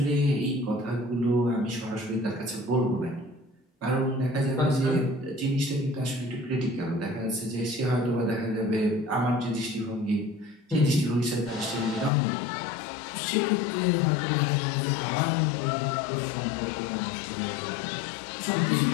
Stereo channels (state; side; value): drops out; right; at 12.1 s